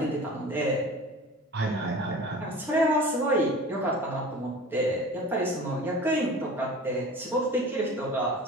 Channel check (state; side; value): normal; both; correlation 0.39